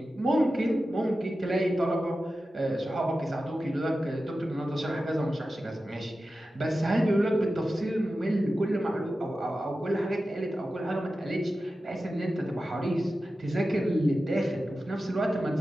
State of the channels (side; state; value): both; normal; correlation 0.93